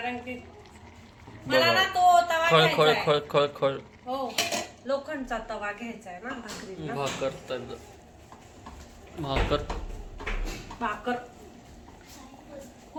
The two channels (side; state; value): both; identical; correlation 1.00